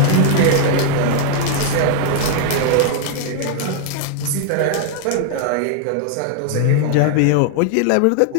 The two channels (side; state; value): both; different; correlation 0.00